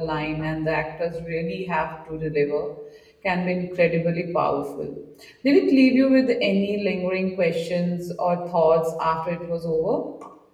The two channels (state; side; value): identical; both; correlation 1.00